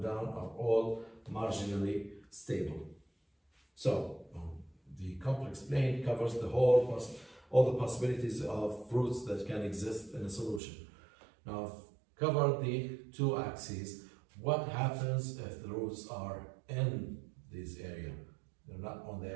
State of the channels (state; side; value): drops out; left; at 10.6 s